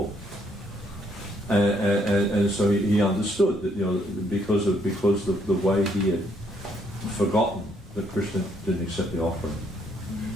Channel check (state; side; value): normal; both; correlation 0.70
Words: And so he understood that because of the way he had forgotten that Krishna didn't accept the offering.